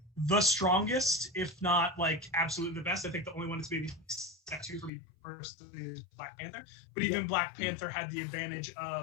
the strongest, if not like absolutely the best. I think the only one that's maybe step two for me personally is Black Panther. But even Black Panther had the advantage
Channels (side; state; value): right; drops out; at 4.9 s